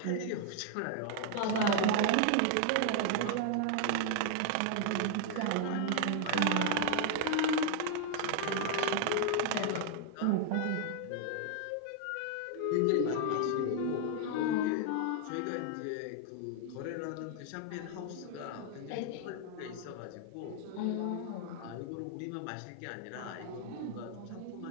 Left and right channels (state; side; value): different; both; correlation 0.00